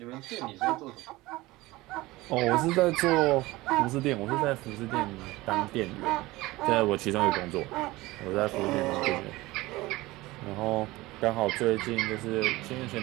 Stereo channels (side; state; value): left; quieter; 19.7 dB